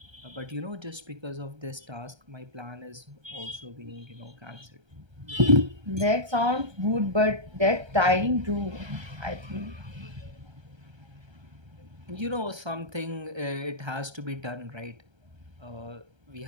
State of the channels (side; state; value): left; late; 1.3 ms